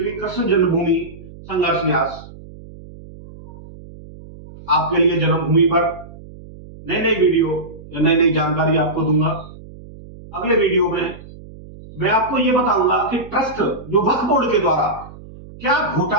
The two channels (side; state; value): right; noise; hum, 18 dB below the sound